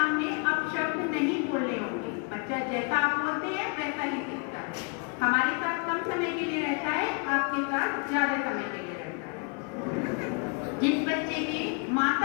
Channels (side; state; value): right; quieter; 35.6 dB